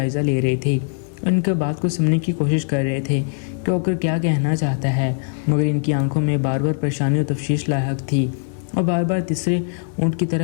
ले रहे थे, उनके बात को सुनने की कोशिश कर रहे थे कि होकर क्या कहना चाहता है, मगर इनकी आंखों में बार बार परेशानी और तफ्शीश लायक थी और बार बार तीसरे ऊँट की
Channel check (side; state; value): right; silent; 55 dB below the other